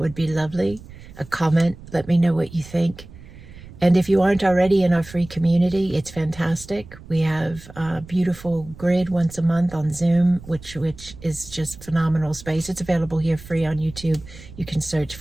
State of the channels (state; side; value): noise; right; rumble, 18 dB below the sound